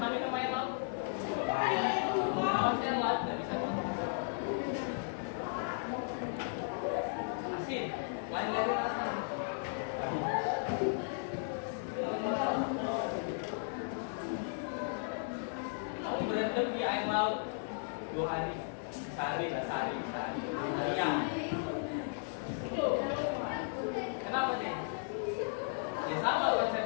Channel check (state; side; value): silent; right; digital silence